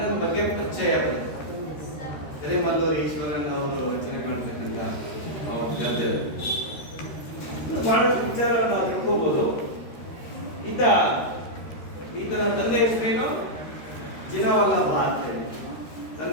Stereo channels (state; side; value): late; right; 13 ms